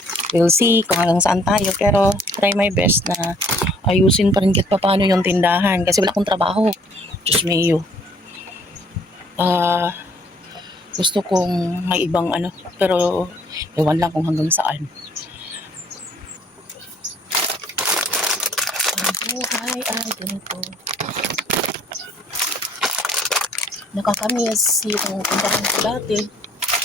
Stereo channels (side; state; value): both; normal; correlation 0.60